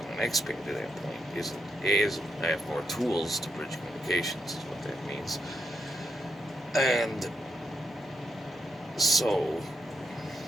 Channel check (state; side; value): normal; both; correlation 0.81